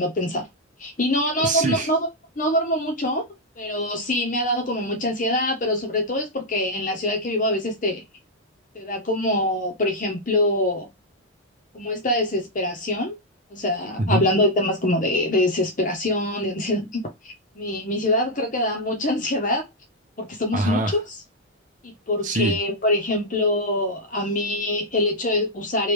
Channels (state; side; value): normal; both; correlation -0.03